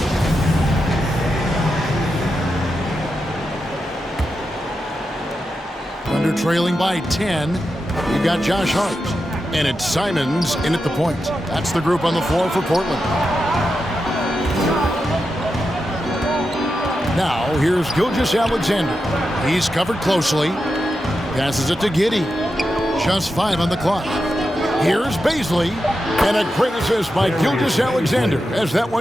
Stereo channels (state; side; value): normal; both; correlation 0.89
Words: Under trailing by 10. You've got Josh Hart. And it's Simons in at the point. That's the group on the floor for Portland. Now, here's Gilgeous-Alexander. He's covered closely. Passes it to Giddey. Just 5 on the clock. Here's Bazley. And a great assist by Gilgeous-Alexander as that